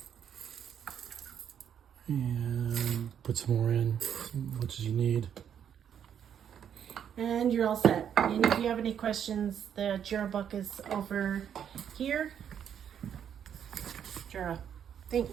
and put some more in, as much as you need. And you're all set. And if you have any questions, the Jura book is over here. Jura.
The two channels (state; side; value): quieter; left; 8.7 dB